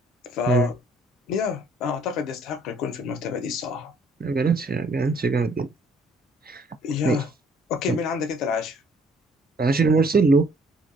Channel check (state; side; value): normal; both; correlation 0.61